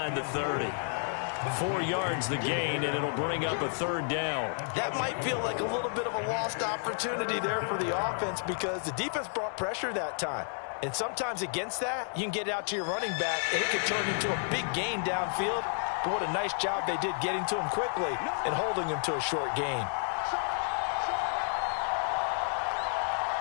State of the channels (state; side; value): silent; right; 57 dB below the other